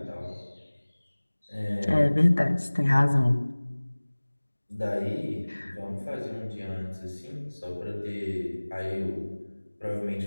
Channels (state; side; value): inverted; both; correlation -1.00